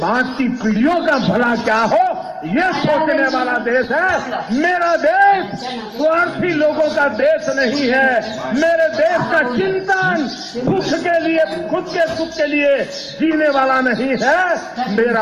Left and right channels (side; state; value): both; identical; correlation 1.00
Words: की पीढ़ियों का भला क्या हो ये सोचने वाला देश है। मेरा देश स्वार्थी लोगों का देश नहीं है। मेरे देश का चिंतन सुख के लिए, खुद के सुख के लिए जीने वाला नहीं है।